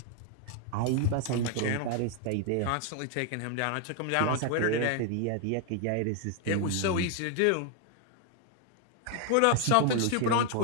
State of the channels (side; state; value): both; different; correlation 0.00